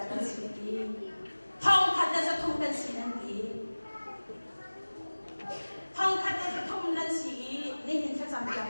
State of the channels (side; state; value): both; inverted; correlation -1.00